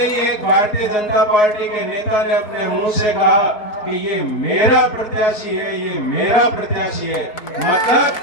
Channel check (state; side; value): late; right; 4.7 ms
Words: एक भारतीय जनता पार्टी के नेता ने अपने मुंह से कहा कि ये मेरा प्रत्याशी है, ये मेरा प्रत्याशी है।